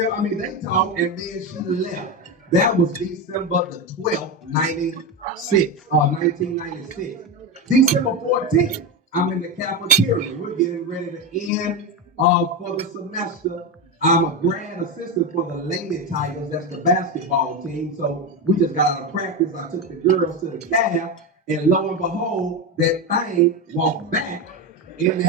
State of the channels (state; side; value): normal; both; correlation 0.15